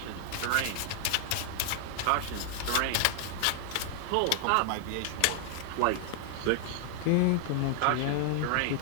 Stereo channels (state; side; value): different; both; correlation 0.00